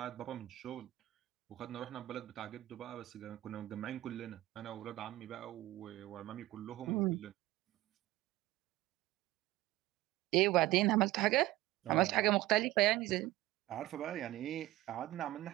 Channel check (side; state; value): left; quieter; 17.1 dB